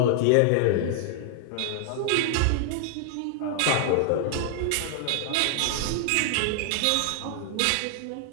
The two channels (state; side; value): different; both; correlation 0.00